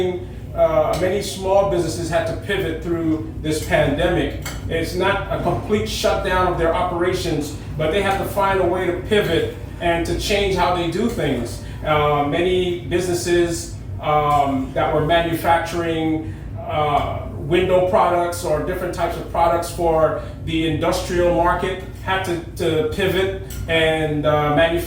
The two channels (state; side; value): identical; both; correlation 1.00